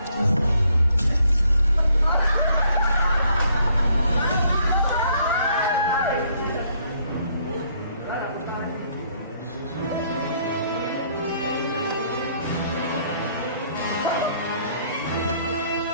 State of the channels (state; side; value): inverted; both; correlation -0.67